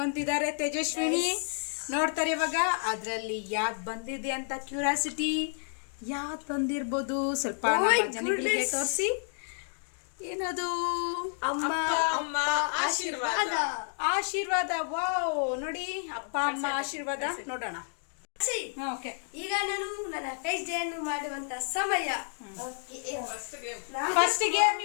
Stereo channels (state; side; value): silent; right; 57 dB below the other